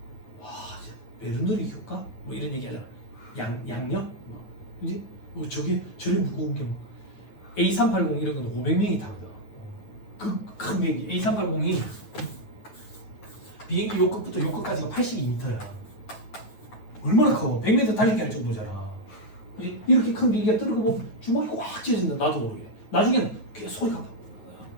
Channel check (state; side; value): late; right; 9.2 ms